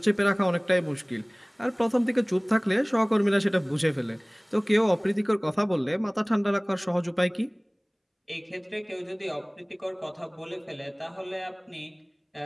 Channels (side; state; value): both; identical; correlation 1.00